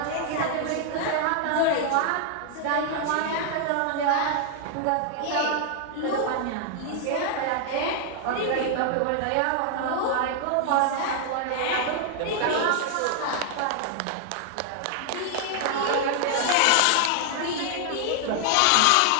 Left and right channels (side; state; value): both; different; correlation 0.00